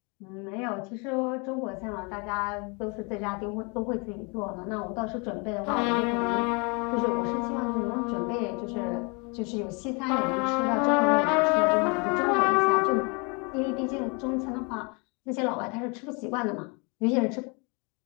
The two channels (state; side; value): quieter; right; 31.7 dB